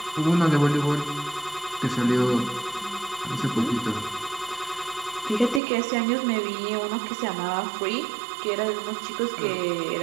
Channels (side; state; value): left; drops out; at 5.6 s